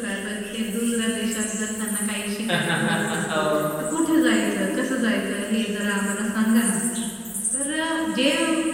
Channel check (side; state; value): both; identical; correlation 1.00